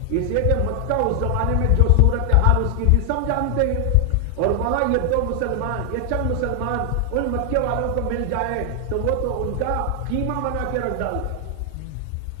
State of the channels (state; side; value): different; both; correlation 0.00